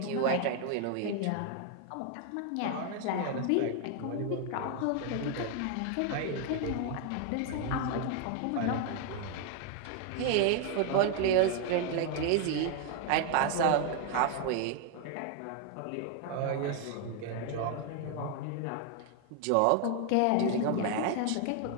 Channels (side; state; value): both; different; correlation 0.00